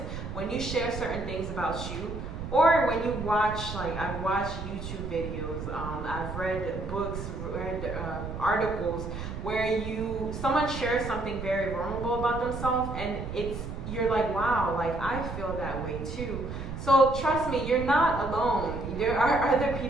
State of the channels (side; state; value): right; noise; rumble, 7 dB below the sound